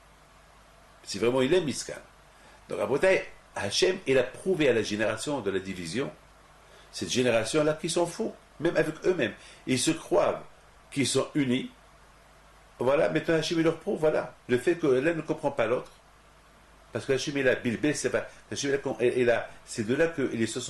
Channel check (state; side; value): identical; both; correlation 1.00